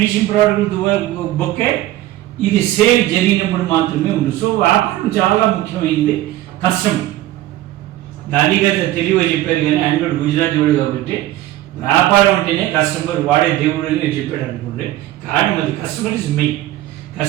ప్రోడక్ట్ బొక్కే, ఇది సేల్ జరిగినప్పుడు మాత్రమే ఉంది. సో వ్యాపారం చాలా ముఖ్యమైనది. కస్టమర్ గాంధీ గారు తెలివిగా చెప్పారు, కానీ ఆయన కూడా గుజరాతీ వాడు కాబట్టి వ్యాపారం అంటేనే కస్టమర్ వాడే దేవుడు అని చెప్పాడు అనుకోండి. కానీ అది కస్టమర్ ఇస్ మెయిన్.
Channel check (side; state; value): left; quieter; 15.0 dB